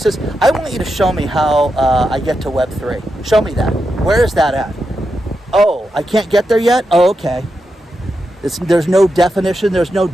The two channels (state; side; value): normal; both; correlation 0.87